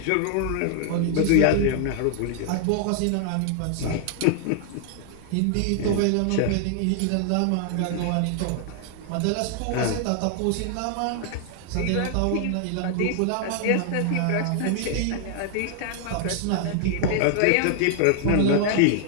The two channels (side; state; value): both; different; correlation 0.00